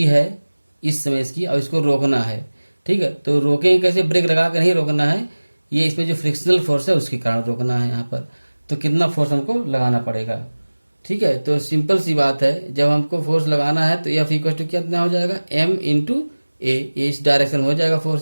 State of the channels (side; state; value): both; inverted; correlation -1.00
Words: है इस समय इसकी, और इसको रोकना है। ठीक है, तो रोकेंगे कैसे, ब्रेक लगा कर नहीं रोकना है, ये इसमें जो फ्रिक्शनल फोर्स है उसके कारण रोकना है यहाँ पर। तो कितना फोर्स हमको लगाना पड़ेगा। ठीक है, तो सिंपल सी बात है, जब हमको फोर्स लगाना है तो F इक्वल टू कितना हो जाएगा, m इंटू ए, इस डायरेक्शन हो जाएगा